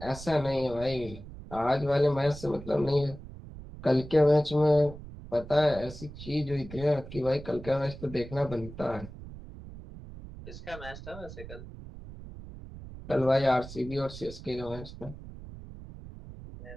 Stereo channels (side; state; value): right; noise; rumble, 14 dB below the sound